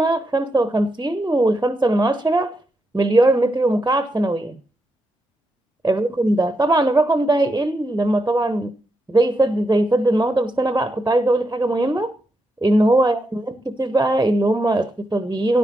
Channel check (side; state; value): both; normal; correlation 0.83